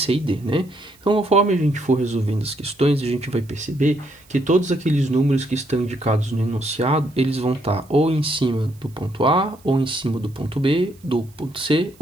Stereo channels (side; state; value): right; noise; hiss, 29 dB below the sound